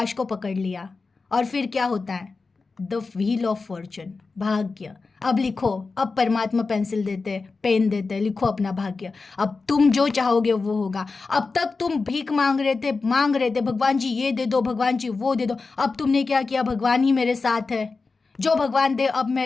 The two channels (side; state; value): right; quieter; 4.2 dB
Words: को पकड़ लिया, और फिर क्या होता है, द व्हील ऑफ फॉर्चून, भाग्य। अब लिखो, अब परमात्मा पेंसिल देते, पेन देते, लिखो अपना भाग्य। अब तुम जो चाहोगे वो होगा। अब तक तुम भीख मांग रहे थे, भगवान जी ये दे दो, भगवान जी वो दे दो। अब तुमने क्या किया, भगवान ही मेरे साथ है, जो भगवान दे अब